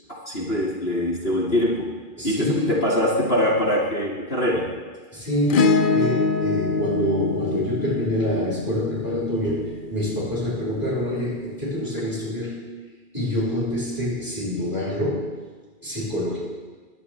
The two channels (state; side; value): late; right; 2.4 ms